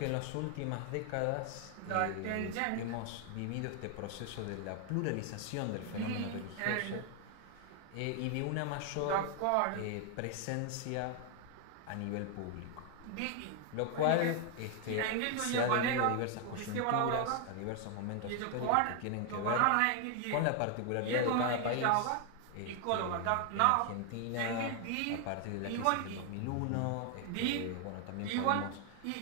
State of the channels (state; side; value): different; both; correlation 0.00